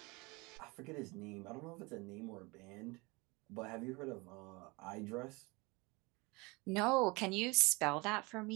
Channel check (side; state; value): left; quieter; 25.9 dB